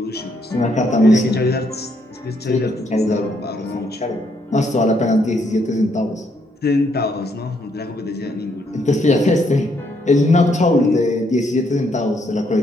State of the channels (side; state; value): both; normal; correlation 0.73